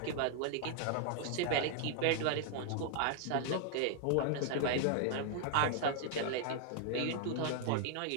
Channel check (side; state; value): both; different; correlation 0.00